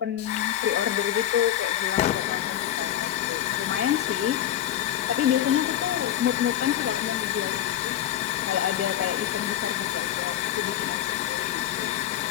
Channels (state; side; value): quieter; right; 11.7 dB